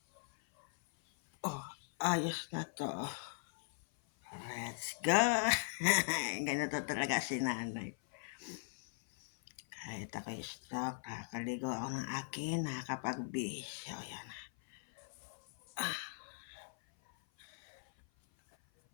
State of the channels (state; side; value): silent; right; 51 dB below the other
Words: Ayos na to, Let's go! Ganito talaga si nanay. Kahit ako'y stroke, nakakaligo ako ng akin, nakakapagbihis. So, yan.